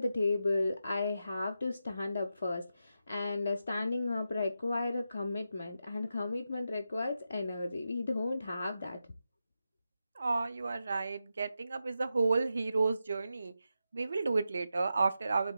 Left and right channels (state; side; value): inverted; both; correlation -0.88